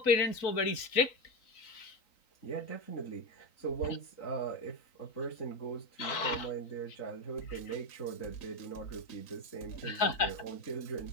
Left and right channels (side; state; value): right; late; 3.9 ms